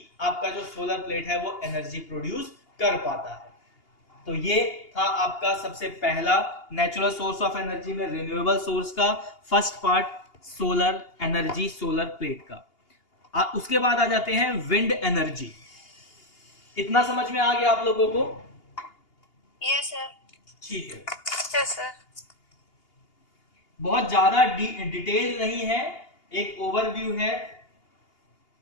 आपका जो सोलर प्लेट है वो एनर्जी प्रोड्यूस कर पाता है। तो ये था आपका सबसे पहला नेचुरल सोर्स ऑफ एनर्जी में रिन्यूएबल सोर्स का first part, solar energy, solar plate का। उसके बाद आ जाते हैं विंड एनर्जी। इतना समझ में आ गया आप लोगों को? Yes sir. ठीक है, यस सर। बहुत ज्यादा डिटेल नहीं है, एक ओवरव्यू है।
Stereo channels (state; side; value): late; right; 2.8 ms